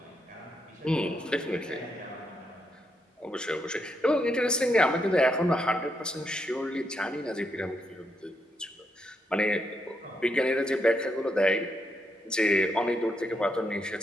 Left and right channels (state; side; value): normal; both; correlation 0.79